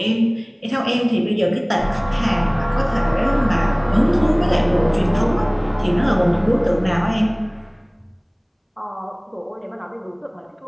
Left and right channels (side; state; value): both; identical; correlation 1.00